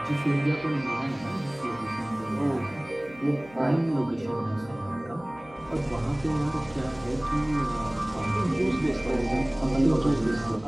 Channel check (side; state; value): left; noise; hum, 22 dB below the sound